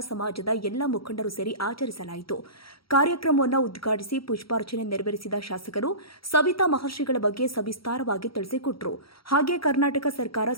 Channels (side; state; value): right; late; 0.75 ms